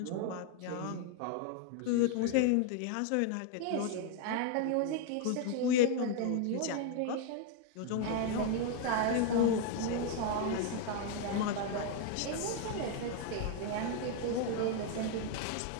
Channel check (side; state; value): both; different; correlation 0.00